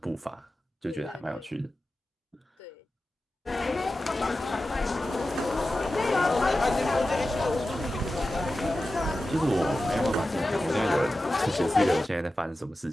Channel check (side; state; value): both; normal; correlation 0.93